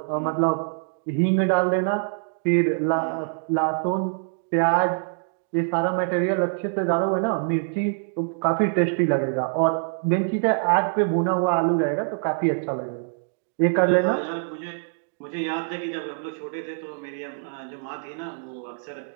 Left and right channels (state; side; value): silent; left; digital silence